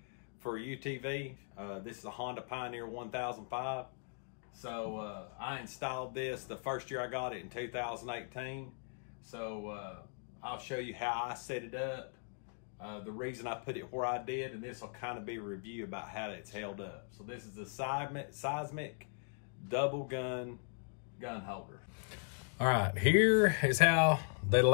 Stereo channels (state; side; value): silent; right; 52 dB below the other